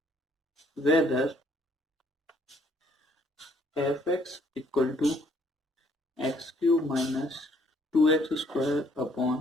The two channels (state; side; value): normal; both; correlation 0.64